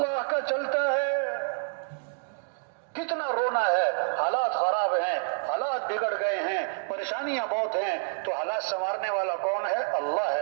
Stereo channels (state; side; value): silent; left; digital silence